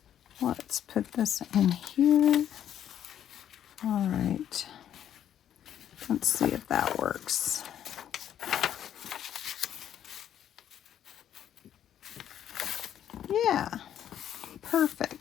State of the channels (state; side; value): quieter; right; 10.2 dB